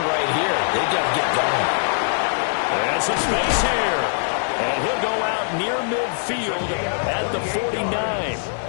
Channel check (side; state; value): right; silent; 64 dB below the other